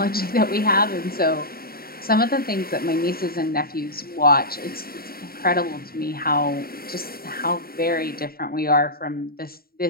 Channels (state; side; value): late; right; 0.43 ms